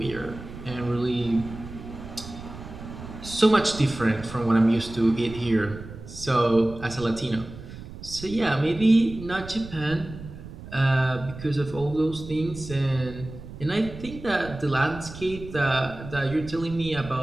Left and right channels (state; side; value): noise; right; rumble, 13 dB below the sound